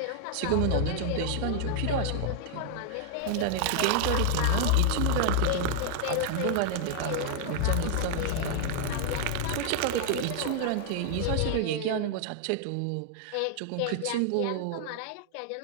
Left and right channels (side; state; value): both; different; correlation 0.00